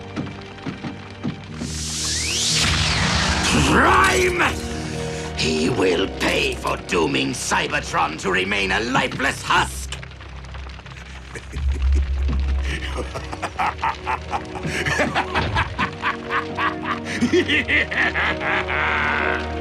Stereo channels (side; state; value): both; identical; correlation 1.00